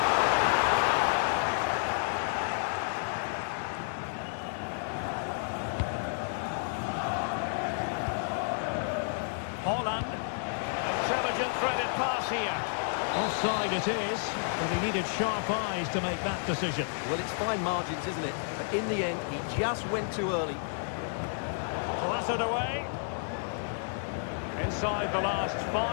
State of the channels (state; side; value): silent; right; 57 dB below the other